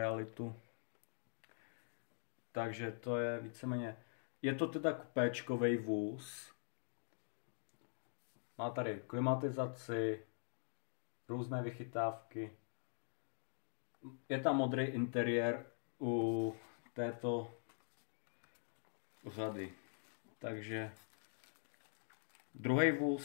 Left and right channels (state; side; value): silent; right; digital silence